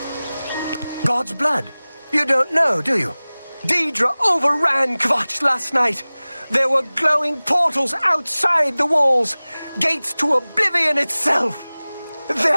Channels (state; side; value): inverted; both; correlation -0.99